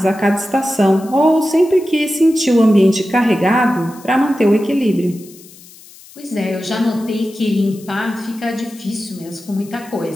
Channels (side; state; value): left; noise; hiss, 22 dB below the sound